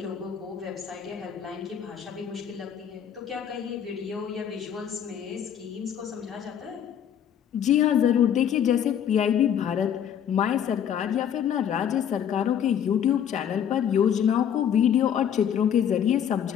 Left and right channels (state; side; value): quieter; right; 9.0 dB